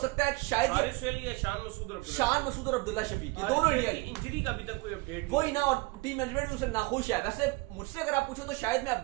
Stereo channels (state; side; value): quieter; left; 24.3 dB